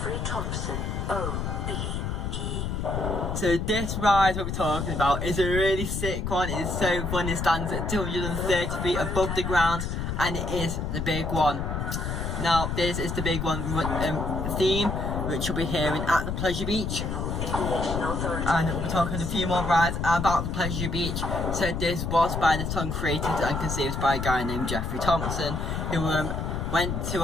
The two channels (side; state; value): left; noise; rumble, 2 dB below the sound